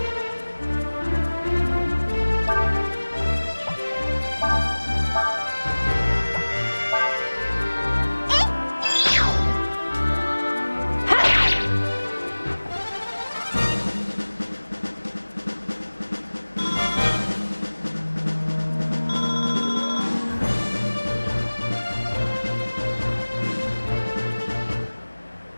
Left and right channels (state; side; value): inverted; both; correlation -1.00